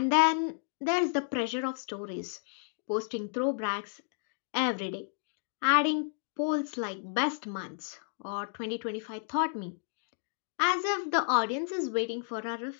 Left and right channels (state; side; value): silent; right; digital silence